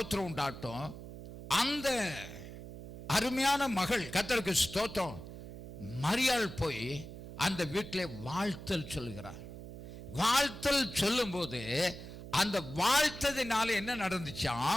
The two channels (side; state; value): right; noise; hum, 12 dB below the sound